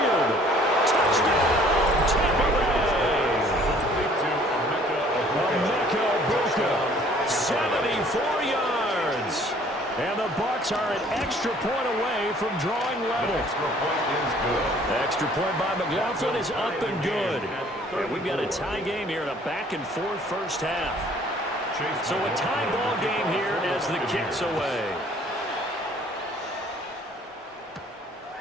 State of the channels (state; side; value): normal; both; correlation 0.56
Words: Touchdown, Tampa Bay. Emeka Ibuka, 74 yards. And the Bucs are an extra point away from drawing level. Extra point by McLaughlin is up and good. And we've got a tie game here in a back-and-forth first half. So a tie ball game here as the kick's away.